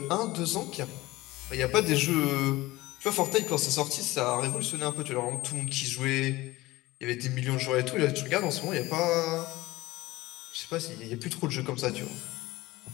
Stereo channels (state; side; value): quieter; right; 19.2 dB